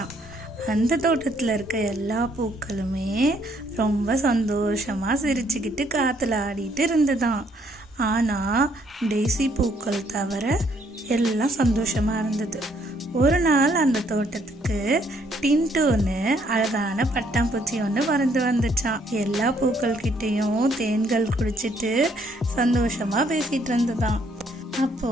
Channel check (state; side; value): normal; both; correlation 0.68